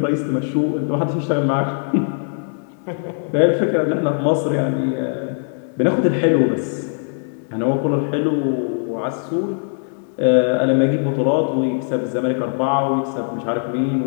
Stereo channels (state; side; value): silent; right; 62 dB below the other